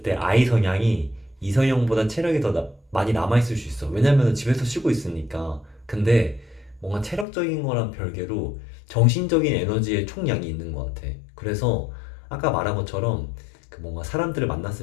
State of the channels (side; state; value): right; drops out; at 7.2 s